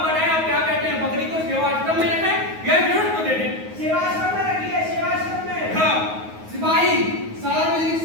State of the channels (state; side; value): late; left; 9.4 ms